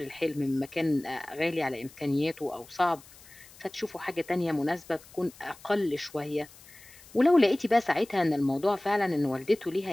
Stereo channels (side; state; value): left; noise; hiss, 22 dB below the sound